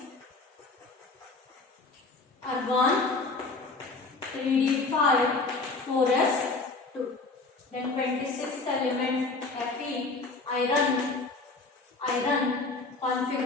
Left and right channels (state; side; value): quieter; right; 3.7 dB